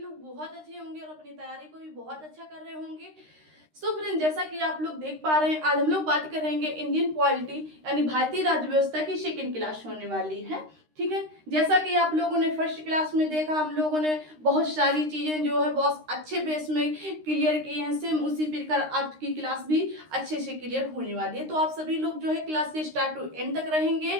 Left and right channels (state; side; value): late; left; 13 ms